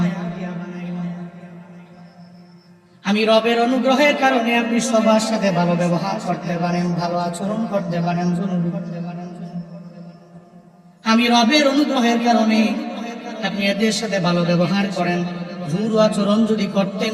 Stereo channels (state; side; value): identical; both; correlation 1.00